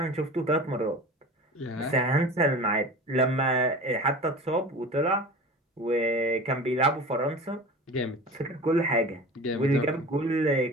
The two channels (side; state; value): both; normal; correlation 0.35